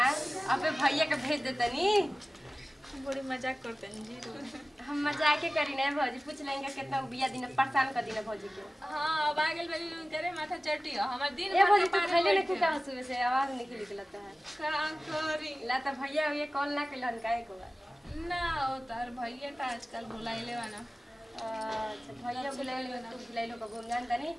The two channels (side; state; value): both; normal; correlation 0.97